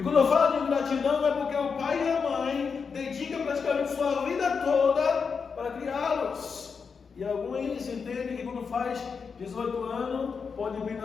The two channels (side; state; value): right; quieter; 5.7 dB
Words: quando eu falo de ingratidão, é porque o pai e a mãe dedicam praticamente sua vida toda para criá-los. E alguns entendem que quando faz 18 anos, pode